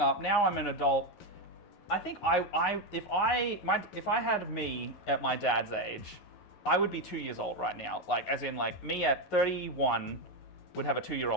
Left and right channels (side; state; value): right; late; 11 ms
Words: now I'm an adult. I think if I had me at my dad's age, I would be 2 years old right now. Like, as in, like, me at 31 would have a